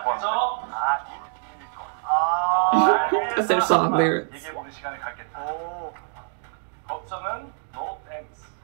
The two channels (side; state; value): left; silent; 62 dB below the other